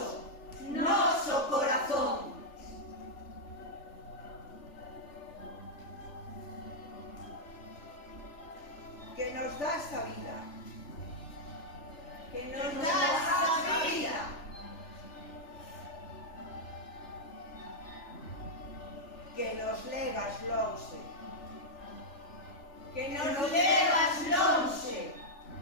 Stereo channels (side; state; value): right; late; 3.4 ms